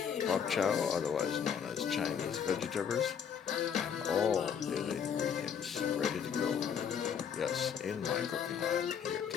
pop chow, otherwise known as Chinese vegetables, and all the other ingredients ready to go. Yes, in my cooking lab here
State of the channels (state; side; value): quieter; right; 7.6 dB